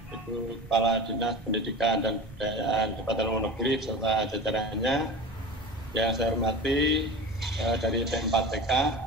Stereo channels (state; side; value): normal; both; correlation 0.32